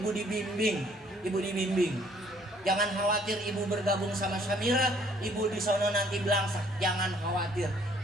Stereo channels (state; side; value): normal; both; correlation 0.61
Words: Jangan khawatir ibu bergabung sama Samira, ibu di sono nanti belangsa. Jangan khawatir.